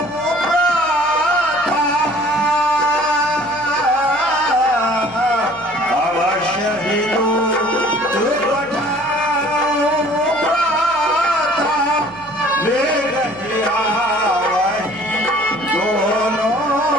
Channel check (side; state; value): left; noise; hum, 25 dB below the sound